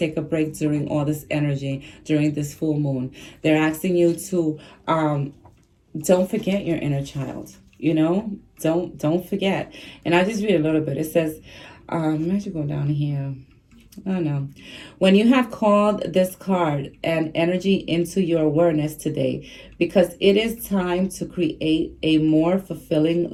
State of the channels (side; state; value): both; identical; correlation 1.00